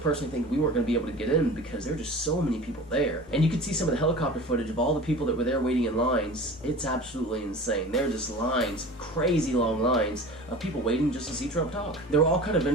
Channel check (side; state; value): both; normal; correlation 0.38